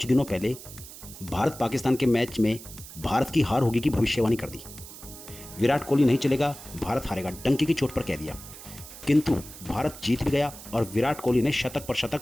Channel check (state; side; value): noise; right; hiss, 15 dB below the sound